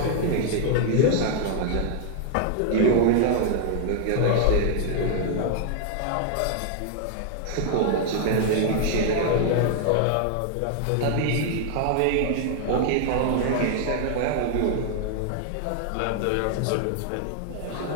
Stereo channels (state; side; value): different; both; correlation 0.00